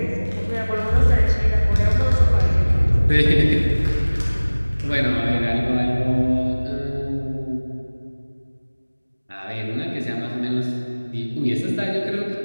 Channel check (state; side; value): inverted; both; correlation -1.00